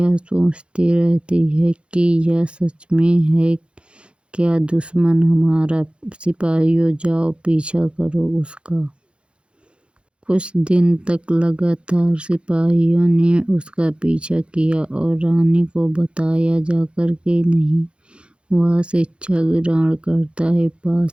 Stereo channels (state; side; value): late; left; 0.057 ms